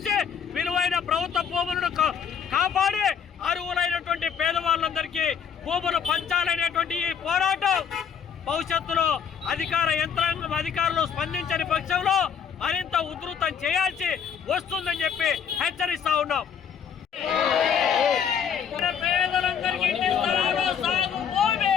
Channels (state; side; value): quieter; right; 7.6 dB